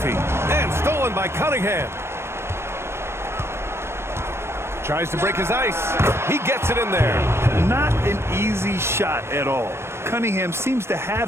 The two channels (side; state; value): left; late; 0.12 ms